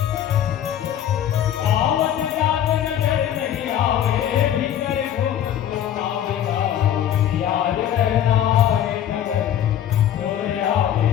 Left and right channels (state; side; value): quieter; right; 10.6 dB